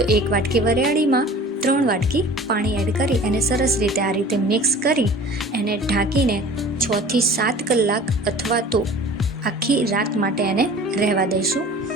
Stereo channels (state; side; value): normal; both; correlation 0.43